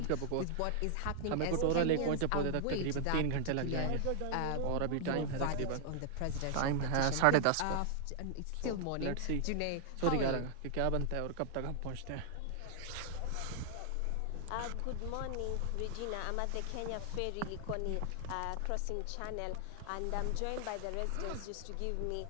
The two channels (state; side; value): different; both; correlation 0.00